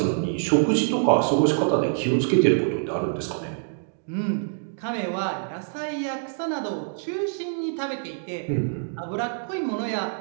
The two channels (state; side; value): silent; left; digital silence